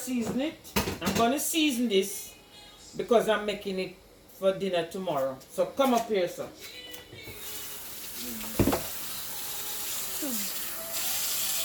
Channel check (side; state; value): both; identical; correlation 1.00